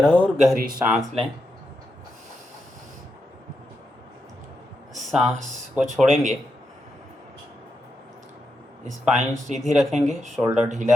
और गहरी सांस लें, सांस को छोड़ेंगे। स्पाइन सीधी रखेंगे, शोल्डर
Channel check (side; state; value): both; normal; correlation 0.85